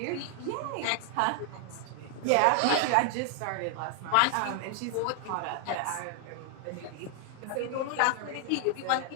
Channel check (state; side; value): different; both; correlation 0.00